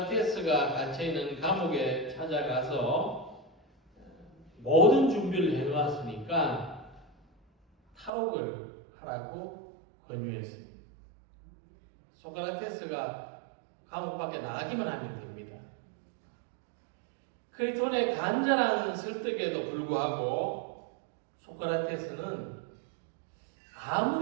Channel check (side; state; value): left; drops out; at 8.1 s